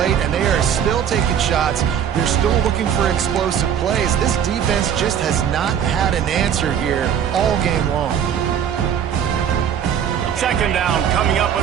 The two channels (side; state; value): left; quieter; 8.7 dB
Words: and they are still taking shots. They're still looking for explosive plays. This defense just has not had an answer here all game long. Second down coming up on